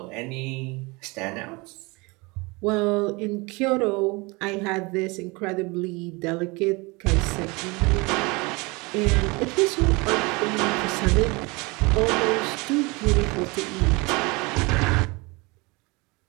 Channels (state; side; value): quieter; left; 26.0 dB